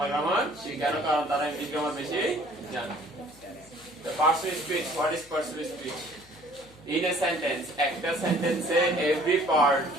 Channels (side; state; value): left; noise; hum, 27 dB below the sound